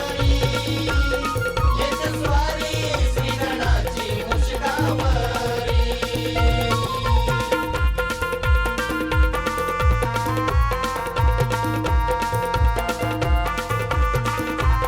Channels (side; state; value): both; identical; correlation 1.00